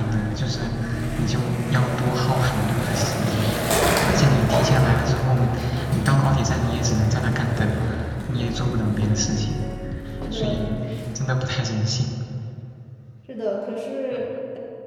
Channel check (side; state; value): both; identical; correlation 1.00